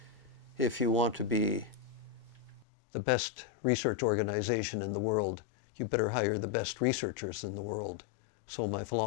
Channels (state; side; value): drops out; right; at 2.7 s